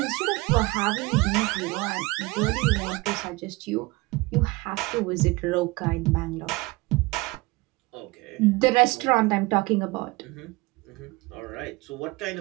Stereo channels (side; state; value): left; quieter; 23.0 dB